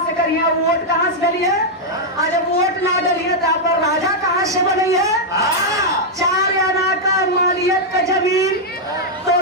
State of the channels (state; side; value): normal; both; correlation -0.03